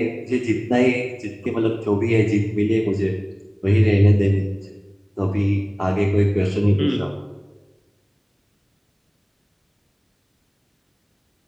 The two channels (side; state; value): both; identical; correlation 1.00